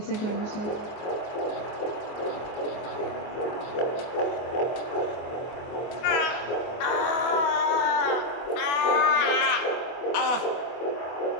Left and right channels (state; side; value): late; right; 24 ms